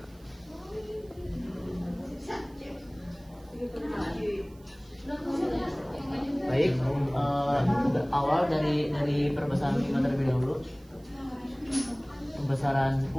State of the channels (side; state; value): right; noise; hiss, 29 dB below the sound